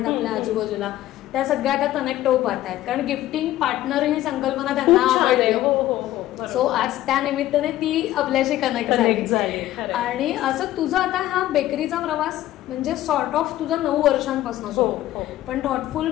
आपल्या आजूबाजूला त्या सगळ्या आता कनेक्ट होऊ पाहतात, कारण गिफ्टिंग पार्टनर ही संकल्पना त्यांना आवडली. सो आज त्या निमित्ताने ती आपल्याशी कनेक्ट झाली. आणि असं तुझं आता हा बेकरीचा प्रवास म्हणजे सॉर्ट ऑफ तुझा 9 वर्षांपासून, पण थॉटफुल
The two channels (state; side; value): quieter; right; 14.4 dB